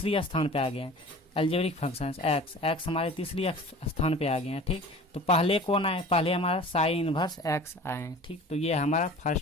स्थान पे आ गए अलजेब्रिक फंक्शंस। एक्स हमारे तीसरी स्थान पे आ गए हैं। ठीक, तो पहले कौन आए, पहले हमारा साइन इनवर्स एक्स आए। ठीक, तो ये हमारा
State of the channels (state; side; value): normal; both; correlation 0.41